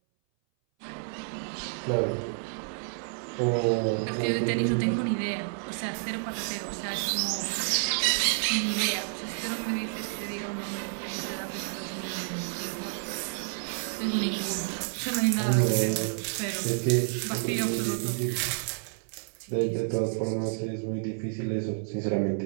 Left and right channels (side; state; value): left; silent; 58 dB below the other